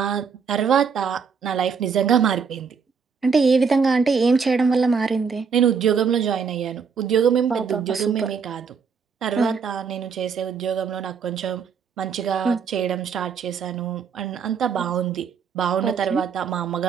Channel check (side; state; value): left; quieter; 6.0 dB